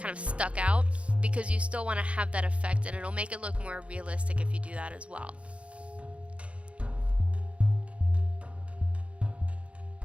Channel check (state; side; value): late; left; 0.062 ms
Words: of stuck out, because you still want to have that effect, and it'll make it look more realistic if you do that as well.